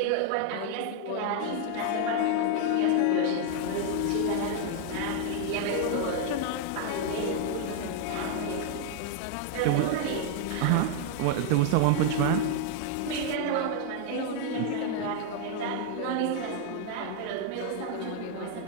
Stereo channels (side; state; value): both; different; correlation 0.00